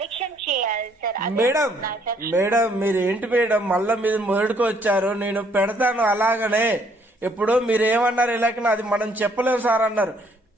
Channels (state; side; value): normal; both; correlation 0.66